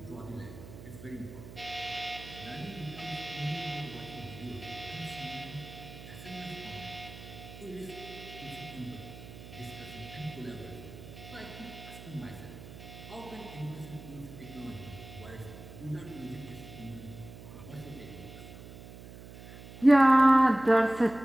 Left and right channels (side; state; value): right; noise; hum, 15 dB below the sound